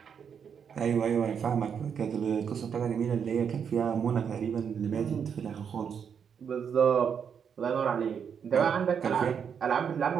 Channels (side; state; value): left; quieter; 7.3 dB